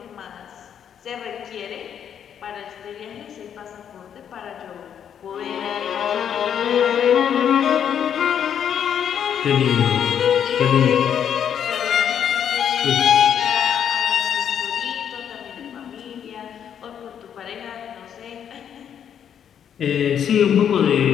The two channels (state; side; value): quieter; right; 8.7 dB